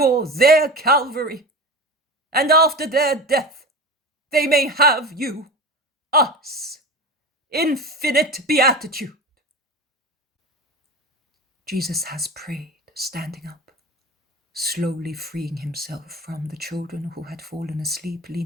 their Calvary, and after their death they may have you, us, infinite beatitude. Jesus has prayed, standing up, slowly freeing himself from the children who had fallen asleep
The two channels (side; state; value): both; normal; correlation 0.30